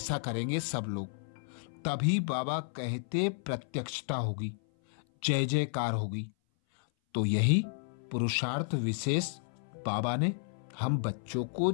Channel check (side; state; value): right; silent; 56 dB below the other